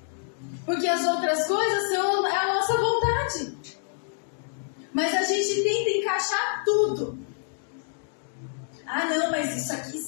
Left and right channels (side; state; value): right; silent; digital silence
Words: Porque as outras coisas são a nossa vontade. Mas a gente tenta encaixar tudo. Ah, não, mas isso aqui